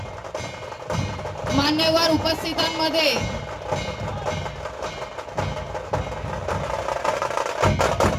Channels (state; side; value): identical; both; correlation 1.00